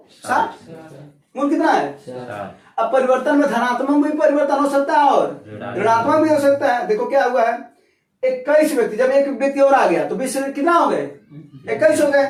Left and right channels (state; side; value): identical; both; correlation 1.00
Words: 60, मूल कितना है। अब परिवर्तन में धनात्मक भी परिवर्तन हो सकता है और ऋणात्मक भी हो सकता है। देखो क्या हुआ है 21 व्यक्ति, जब एक व्यक्ति और आ गया तो 20 कितना हो गए 21 हो